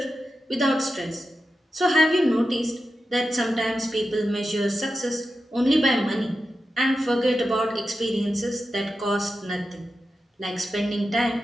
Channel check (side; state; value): both; normal; correlation 0.90